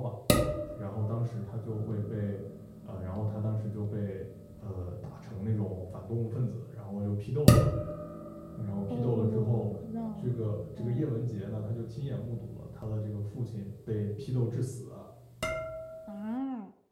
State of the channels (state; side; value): identical; both; correlation 1.00